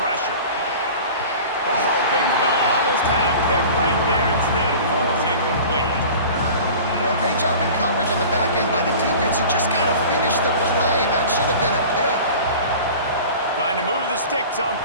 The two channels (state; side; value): inverted; both; correlation -0.40